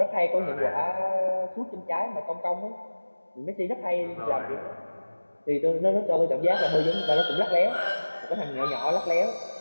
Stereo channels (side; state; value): both; inverted; correlation -1.00